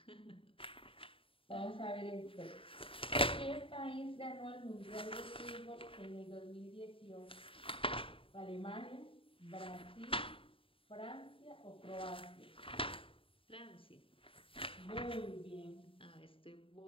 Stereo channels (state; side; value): late; right; 0.26 ms